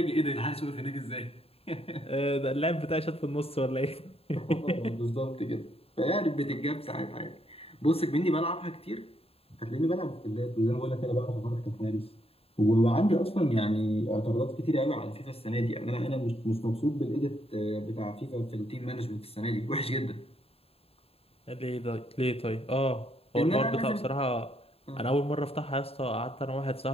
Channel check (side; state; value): right; late; 0.28 ms